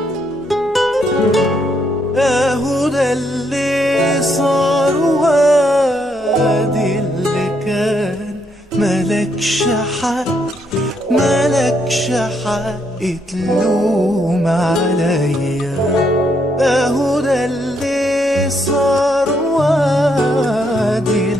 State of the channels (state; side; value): normal; both; correlation 0.74